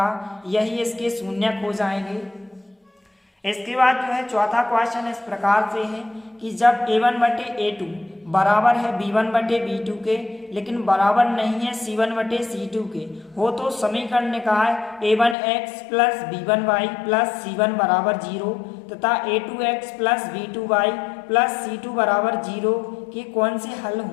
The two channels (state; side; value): drops out; right; at 15.4 s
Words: यही इसके शून्यक हो जाएंगे। इसके बाद जो है चौथा क्वेश्चन इस प्रकार से है कि जब a1 बटे a2 बराबर है b1 बटे b2 के लेकिन बराबर नहीं है c1 बटे c2 के हो तो समीकरण निकाय a1x plus b1y plus c1 बराबर 0 तथा a2x plus b2y plus c2 बराबर 0 के कौन से हल